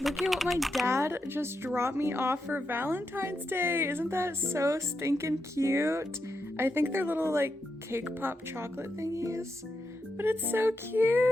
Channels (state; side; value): normal; both; correlation 0.85